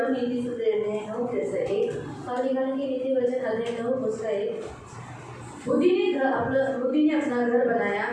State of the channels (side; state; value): both; identical; correlation 1.00